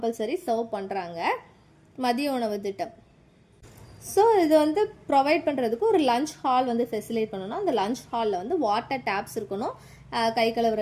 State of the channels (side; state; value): both; identical; correlation 1.00